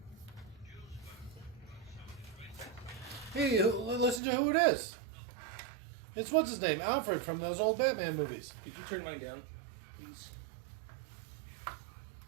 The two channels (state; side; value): drops out; left; at 4.2 s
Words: Hey, listen to who it is. It's what's his name? Alfred from those old Batman movies. Could you turn mine down, please?